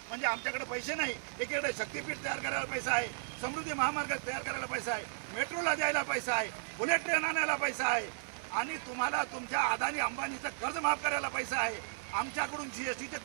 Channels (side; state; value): left; silent; 55 dB below the other